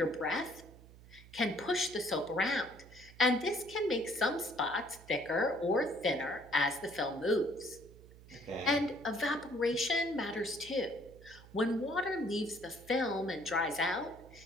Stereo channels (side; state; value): right; noise; hum, 20 dB below the sound